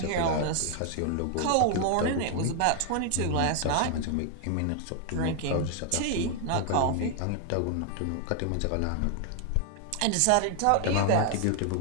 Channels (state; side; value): different; both; correlation 0.00